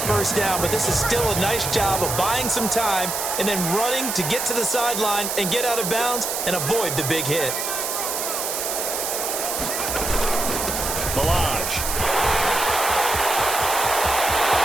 first down, but this is still a nice job of buying some time and then running to get to the sideline and get out of bounds and avoid the big hit. Balaj.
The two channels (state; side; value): noise; right; hiss, 2 dB below the sound